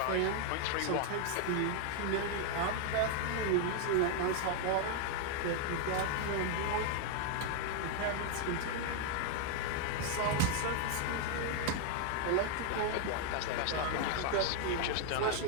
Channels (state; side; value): different; both; correlation 0.00